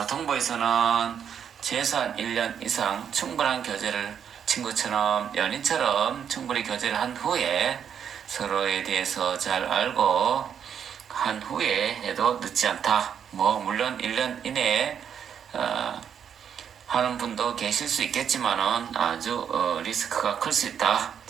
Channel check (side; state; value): left; quieter; 8.1 dB